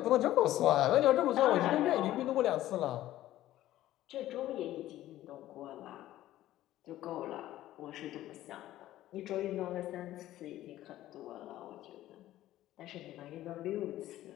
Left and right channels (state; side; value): quieter; right; 14.3 dB